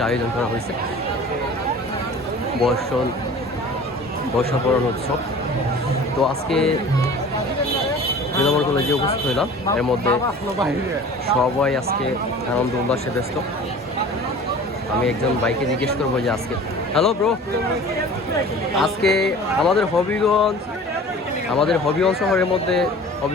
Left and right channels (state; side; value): normal; both; correlation 0.43